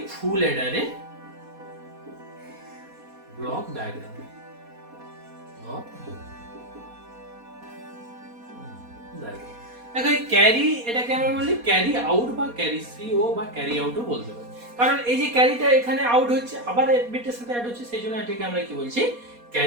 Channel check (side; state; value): left; late; 4.2 ms